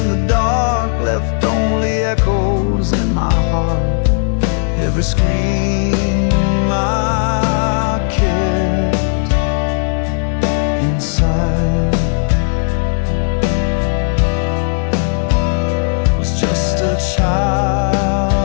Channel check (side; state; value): right; silent; 68 dB below the other